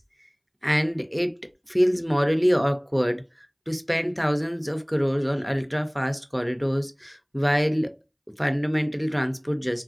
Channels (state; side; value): identical; both; correlation 1.00